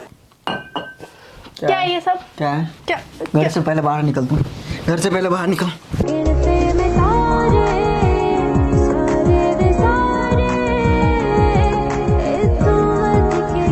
क्या है ये सब? क्या है? क्या घर से पहले बाहर निकल तू, घर से पहले बाहर निकल।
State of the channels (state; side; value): identical; both; correlation 1.00